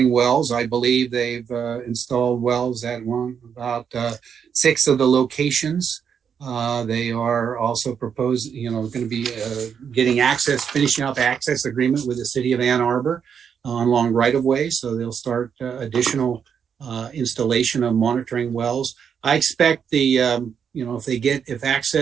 wells. I believe they've installed wells at about 6 of the locations. They are also going to be finishing up access agreement with the City of Ann Arbor along right of way. So they'll start additional installation of monitoring wells. I expect if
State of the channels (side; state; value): left; quieter; 7.4 dB